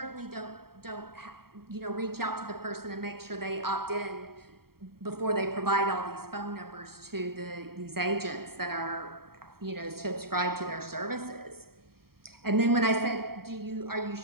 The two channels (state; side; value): late; left; 0.94 ms